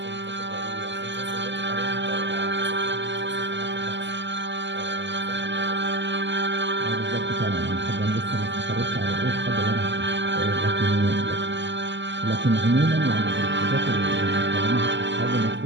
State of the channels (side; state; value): left; late; 0.53 ms